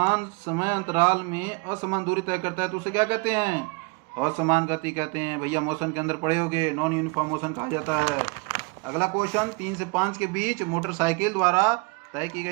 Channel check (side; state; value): left; quieter; 29.2 dB